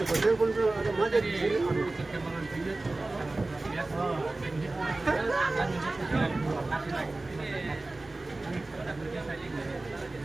telepon ada macet di sini. Perkembangan video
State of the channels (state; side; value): quieter; left; 3.0 dB